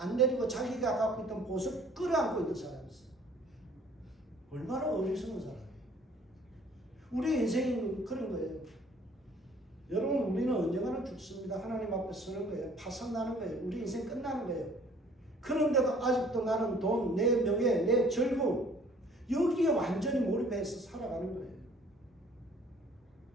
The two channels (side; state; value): both; normal; correlation 0.55